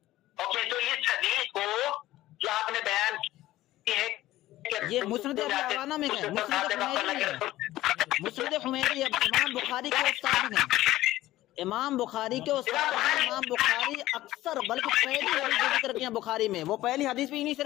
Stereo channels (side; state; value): right; quieter; 15.7 dB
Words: اوکے، تو اس حدیث کو جو آپ نے بیان کی ہے یہ مسند ابی عوانہ میں ہے، مسند حمیدی ہے، امام بخاری کے استاد ہیں، امام بخاری کے استاد ہیں. امام بخاری اکثر بلکہ پہلی حدیث جو ذکر کیا بخاری میں وہ پہلی حدیث بھی انہی سے